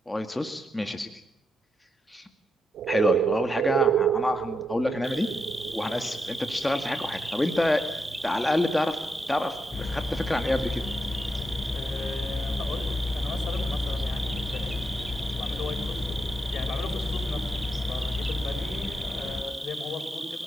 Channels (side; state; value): both; normal; correlation 0.83